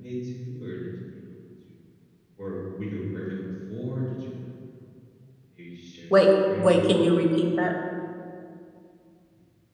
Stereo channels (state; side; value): identical; both; correlation 1.00